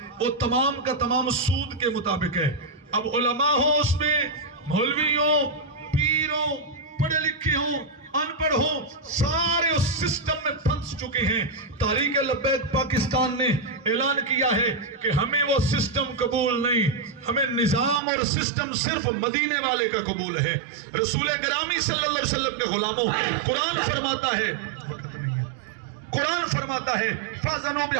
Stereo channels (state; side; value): drops out; left; at 18.0 s